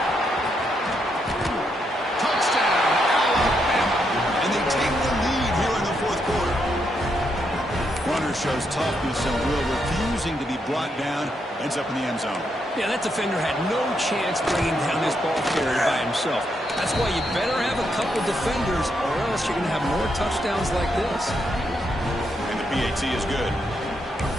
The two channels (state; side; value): normal; both; correlation 0.79